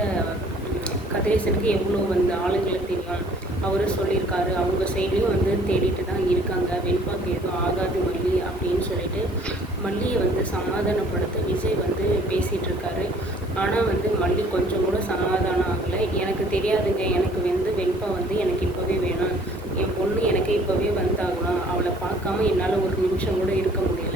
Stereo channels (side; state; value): both; normal; correlation 0.56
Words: கதிரேசனுக்கு எவ்வளோ வந்து ஆளுங்களை தெரியும், அவரும் சொல்லியிருக்காரு, அவங்க சைட்லேயும் வந்து தேடிட்டு தான் இருக்காங்க, வெண்பாக்கு எதுவும் ஆகாது மல்லி அப்படின்னு சொல்லிட்டு மல்லியை வந்து சமாதானப்படுத்த விஜய் வந்து பேசிகிட்டு இருக்காரு. ஆனால் வந்து மல்லி கொஞ்சம் கூட சமாதானம் ஆகலை. எனக்கு தெரியாதுங்க, எனக்கு வந்து வெண்பா வந்து எனக்கு இப்போவே வேணும், என் பொண்ணு எனக்கு இப்போவே வந்தாகணும், அவளை பார்க்காம என்னால் ஒரு நிமிஷம் கூட இருக்க